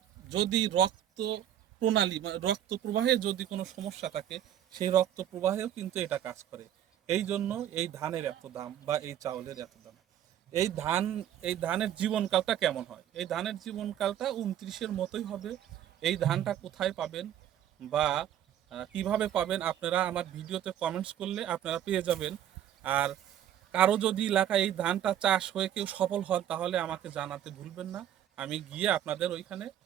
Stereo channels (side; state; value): left; quieter; 10.8 dB